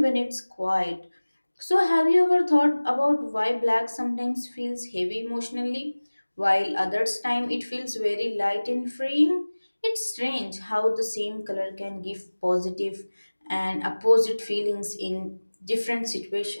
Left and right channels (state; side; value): inverted; both; correlation -1.00